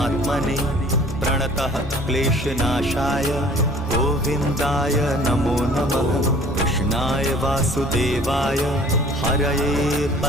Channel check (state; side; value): normal; both; correlation 0.51